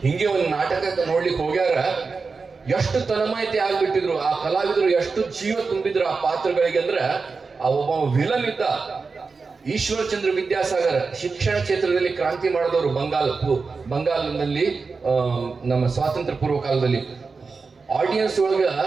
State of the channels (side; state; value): left; quieter; 4.5 dB